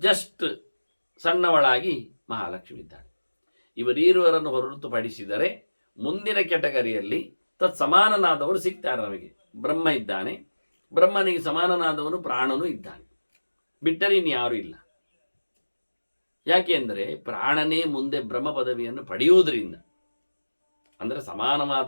ಸಣ್ಣವಳಾಗಿ ಮಹಾಲಕ್ಷ್ಮಿ ಇದ್ದಾಳೆ. ಇವರೀರುವರನ್ನು ಹೊರತುಪಡಿಸಿದರೆ ಮುಂದಿನ ಕೆಟಗರಿಯಲ್ಲಿ ತತ್ಸಮಾನನಾದವರು ಸಿಗ್ತಾರೆ ನಮಗೆ. ಬ್ರಹ್ಮ ಇದ್ದಾನೆ, ಬ್ರಹ್ಮನಿಗೆ ಸಮಾನನಾದವನು ಪ್ರಾಣನೂ ಇದ್ದಾನೆ. ಬಿಟ್ಟರೆ ಇನ್ಯಾರೂ ಇಲ್ಲ. ಯಾಕೆ ಅಂದರೆ ಪ್ರಾಣನೇ ಮುಂದೆ ಬ್ರಹ್ಮ ಪದವಿಯನ್ನು ಪಡೆಯುವುದರಿಂದ, ಅಂದರೆ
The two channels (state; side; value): inverted; both; correlation -1.00